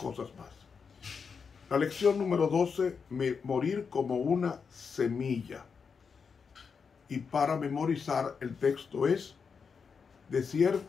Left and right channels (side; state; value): right; quieter; 5.8 dB